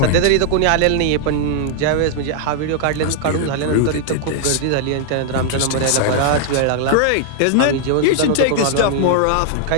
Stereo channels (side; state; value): both; different; correlation -0.01